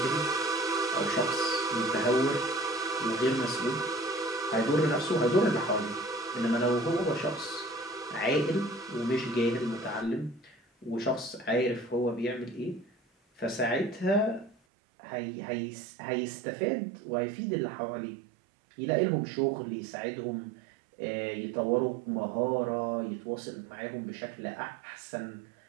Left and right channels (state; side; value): drops out; left; at 14.6 s